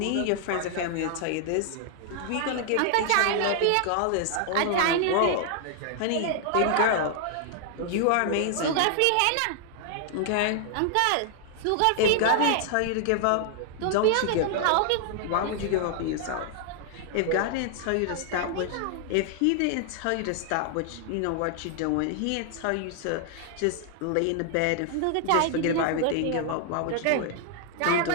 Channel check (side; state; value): both; different; correlation 0.00